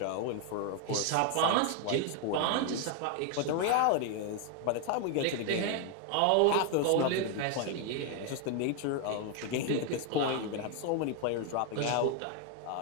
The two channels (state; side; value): different; both; correlation 0.01